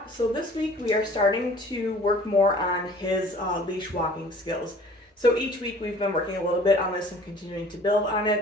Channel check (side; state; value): both; normal; correlation 0.50